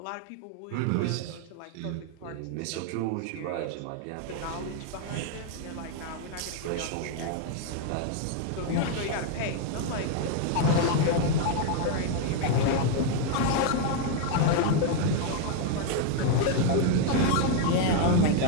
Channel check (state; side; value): different; both; correlation 0.01